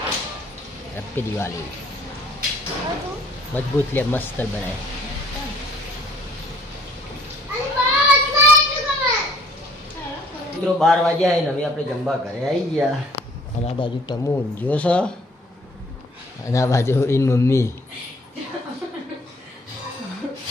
હેપી દિવાળી। મજબૂત લે, મસ્ત બનાય। મિત્રો 12 વાગ્યા હે ને હવે આપણે જમવા ઘરે આવી ગયા। અને આ બાજુ ટમુ ઊંઘ્યો છે, અને આ બાજુ એની મમ્મી।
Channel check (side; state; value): both; normal; correlation 0.58